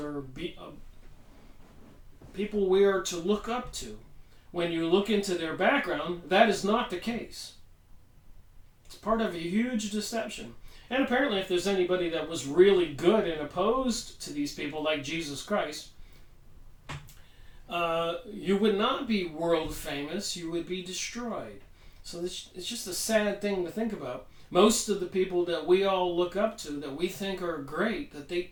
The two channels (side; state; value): both; identical; correlation 1.00